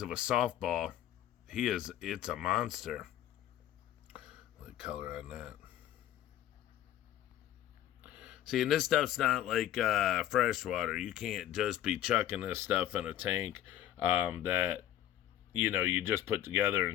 of a softball. It's a monster. The color on that. See, and this stuff's not like freshwater. You can't just be chucking this stuff in a tank that, you just put together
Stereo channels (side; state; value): right; quieter; 12.1 dB